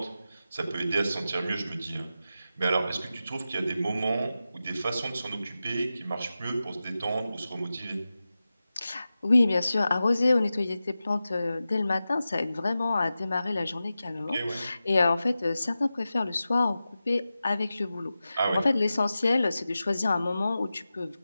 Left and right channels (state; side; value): inverted; both; correlation -0.93